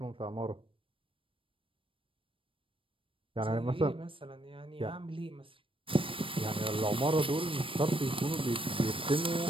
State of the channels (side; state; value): left; late; 0.25 ms